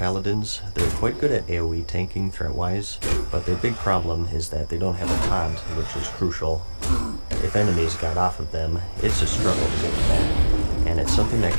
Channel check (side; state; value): both; inverted; correlation -1.00